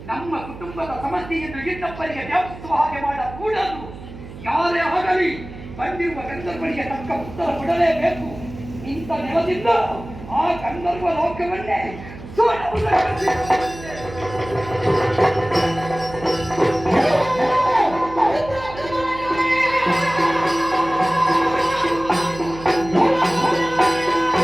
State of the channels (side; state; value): right; noise; hum, 14 dB below the sound